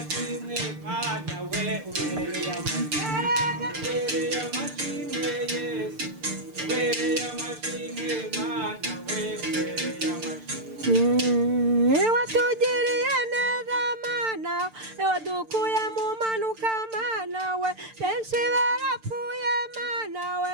Mana we ubereye amashimwe Yesu ubereye amashimwe Mana we ubereye amashimwe watugiriye neza Mana wadukuye mu manuka Mana we benshi barapfuye Mana we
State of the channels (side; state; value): left; late; 6.7 ms